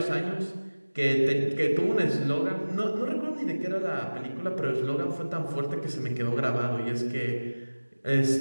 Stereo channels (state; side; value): inverted; both; correlation -1.00